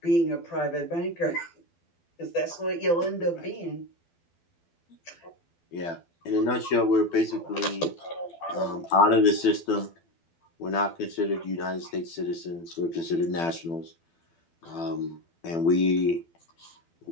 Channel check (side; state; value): right; late; 12 ms